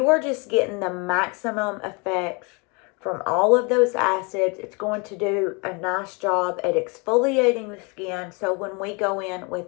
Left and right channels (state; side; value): quieter; right; 30.8 dB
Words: are just getting the maximum effect from all of those acids. It's going to do a nice job at exfoliating the skin. So when we go in